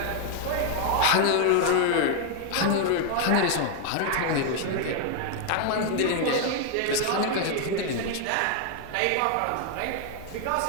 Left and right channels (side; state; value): both; different; correlation 0.00